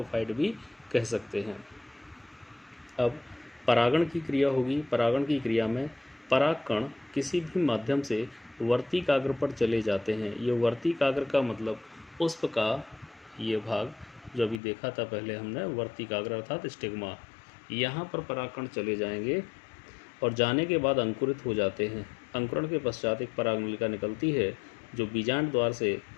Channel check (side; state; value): right; drops out; at 14.6 s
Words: भी कह सकते हैं। अब परागण की क्रिया होगी। परागण की क्रिया में परागकण किसी भी माध्यम से वर्तिकाग्र पर चले जाते हैं। ये वर्तिकाग्र का मतलब पुष्प का ये भाग जो अभी देखा था पहले हमने, वर्तिकाग्र अर्थात स्टिग्मा, यहाँ पर परागकण चले जाएंगे और जाने के बाद अंकुरित हो जाते हैं। अंकुरण के पश्चात एक परागनलिका निकलती है जो बीजांड द्वार से